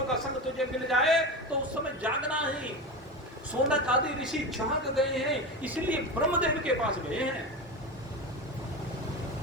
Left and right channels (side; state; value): both; normal; correlation 0.23